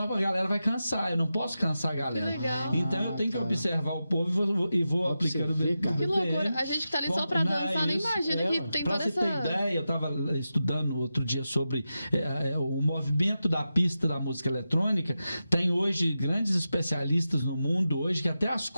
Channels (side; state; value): both; inverted; correlation -0.91